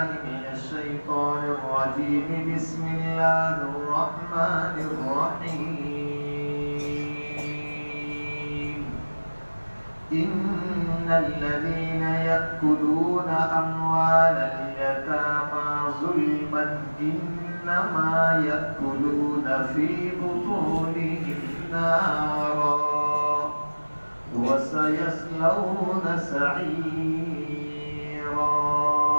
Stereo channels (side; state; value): both; inverted; correlation -1.00